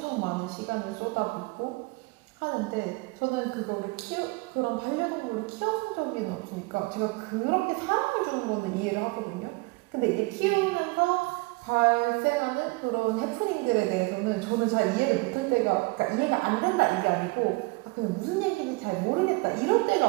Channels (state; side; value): quieter; left; 26.1 dB